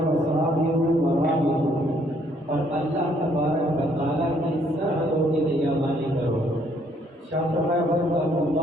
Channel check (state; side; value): normal; both; correlation 0.66